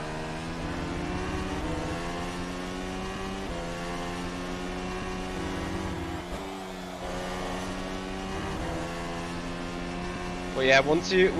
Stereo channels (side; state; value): both; identical; correlation 1.00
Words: But yeah, once